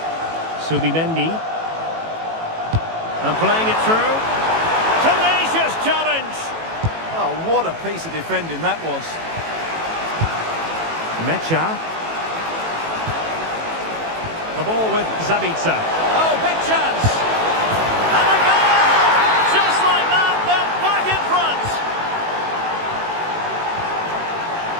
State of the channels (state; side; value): late; left; 18 ms